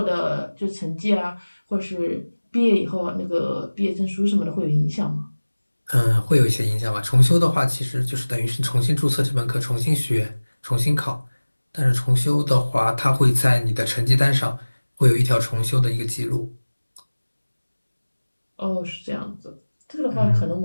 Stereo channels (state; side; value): inverted; both; correlation -1.00